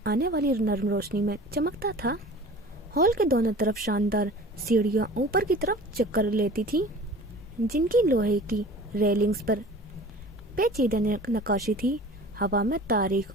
आने वाली नर्म रोशनी में चमकता था। हॉल के दोनों तरफ शानदार सीढ़ियां ऊपर की तरफ चक्कर लेती थी, जिनकी लोहे की रेलिंग्स पर पेचीदा नक्काशी थी। हवा में तारीख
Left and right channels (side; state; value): both; normal; correlation 0.42